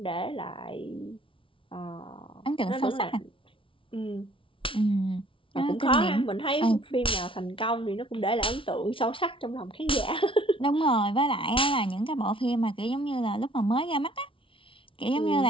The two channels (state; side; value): late; right; 0.25 ms